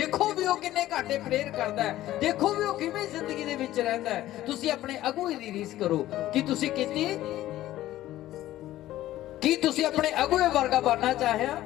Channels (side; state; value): right; quieter; 14.5 dB